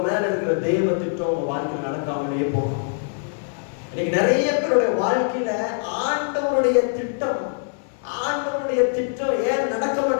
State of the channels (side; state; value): right; silent; digital silence